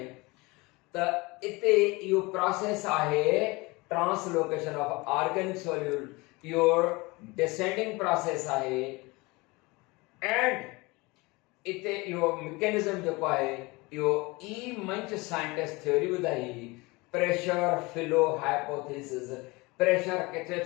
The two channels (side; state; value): right; quieter; 24.3 dB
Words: त इते इहो प्रोसेस आहे translocation of organic solute, your descending process आहे। एंड इते इहो मैकेनिज्म जेको आहे इहो ई मंच साइंटिस्ट थ्योरी ॿुधाई प्रेशर फ्लो हाइपोथेसिस। प्रेशर किथे